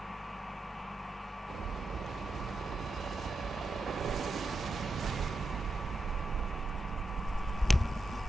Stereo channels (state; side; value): normal; both; correlation 0.88